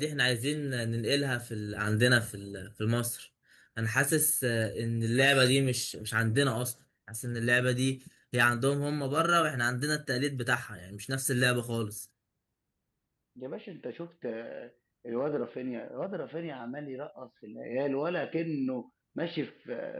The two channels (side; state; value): both; identical; correlation 1.00